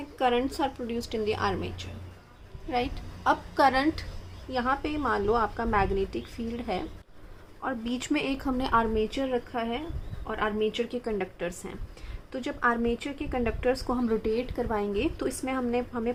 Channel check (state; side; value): identical; both; correlation 1.00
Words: currents are produced in the armature. Right, अब करंट यहाँ पे मान लो आपका मैग्नेटिक फील्ड है और बीच में एक हमने आर्मेचर रखा है और आर्मेचर के कंडक्टर्स हैं. तो जब आर्मेचर के कंडक्टर्स को हम रोटेट करवाएंगे तो इसमें हमें